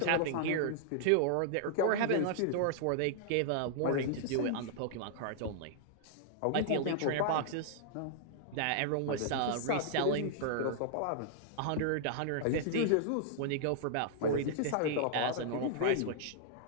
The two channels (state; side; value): different; both; correlation -0.01